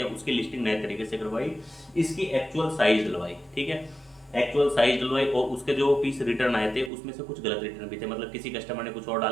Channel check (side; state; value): left; drops out; at 6.9 s